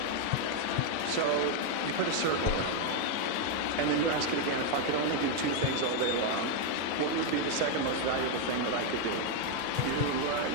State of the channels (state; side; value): different; both; correlation 0.01